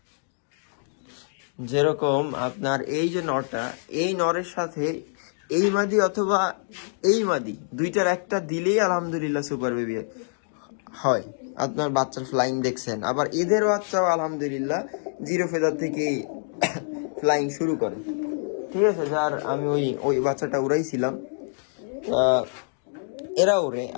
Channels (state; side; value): silent; right; digital silence